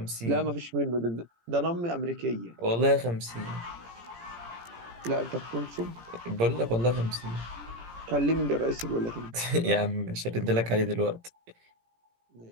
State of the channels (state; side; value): late; left; 17 ms